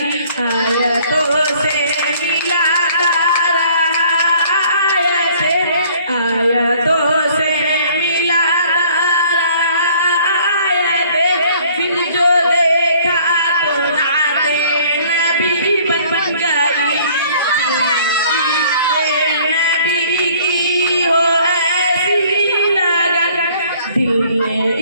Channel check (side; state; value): both; inverted; correlation -0.56